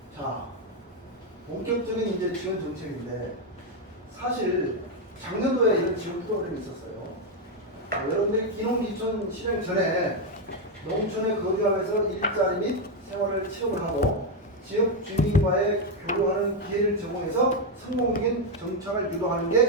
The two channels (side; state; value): both; normal; correlation 0.04